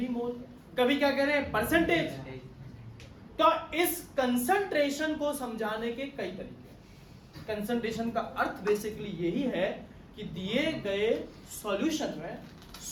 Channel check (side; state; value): both; identical; correlation 1.00